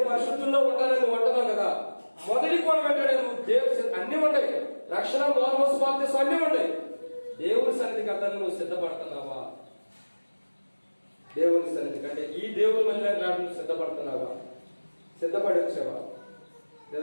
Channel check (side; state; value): both; inverted; correlation -1.00